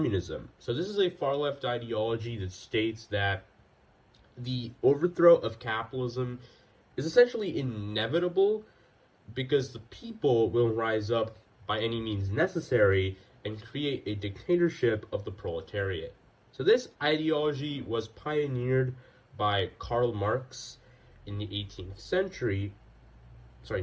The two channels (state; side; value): identical; both; correlation 1.00